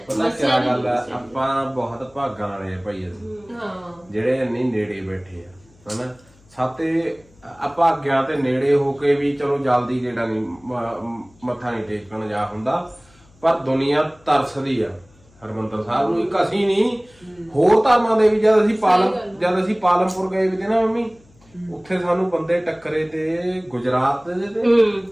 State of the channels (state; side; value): noise; left; hum, 29 dB below the sound